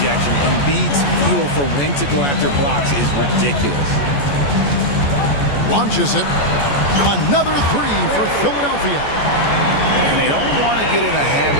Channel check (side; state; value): right; late; 14 ms